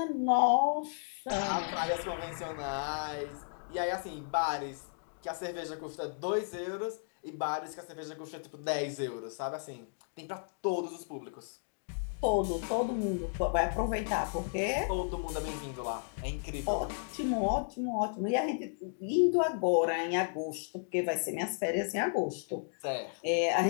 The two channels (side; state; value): right; silent; digital silence